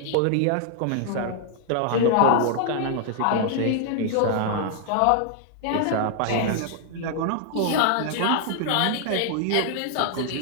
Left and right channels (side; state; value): both; different; correlation 0.00